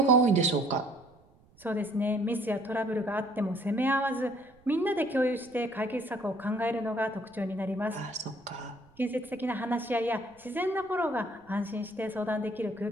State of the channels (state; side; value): noise; right; rumble, 29 dB below the sound